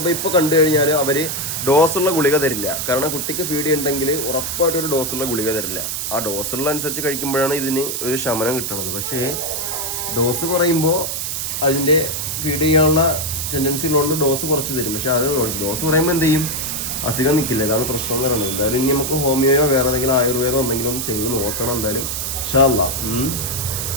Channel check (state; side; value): noise; right; hiss, 3 dB below the sound